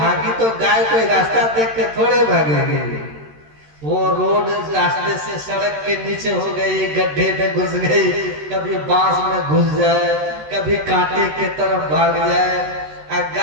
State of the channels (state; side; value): late; left; 13 ms